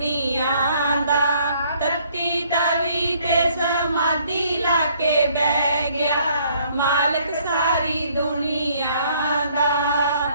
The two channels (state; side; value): inverted; both; correlation -0.63